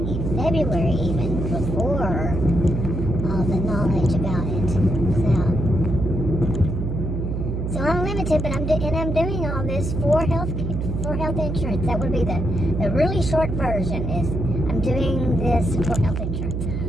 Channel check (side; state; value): right; noise; hum, 2 dB below the sound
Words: February even, before all the knowledge about it was out. So I'm limited, but I'm doing all this for health insurance. That would be the really short version. Is I'm doing this for health insurance.